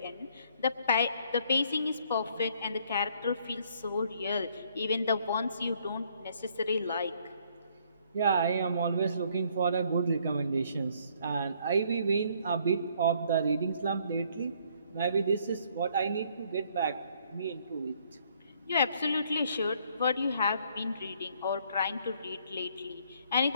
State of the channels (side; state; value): both; inverted; correlation -0.65